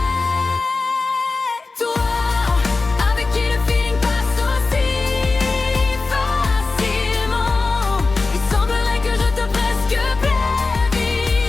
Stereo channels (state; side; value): quieter; right; 3.8 dB